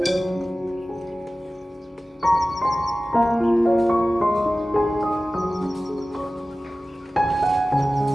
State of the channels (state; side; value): normal; both; correlation 0.96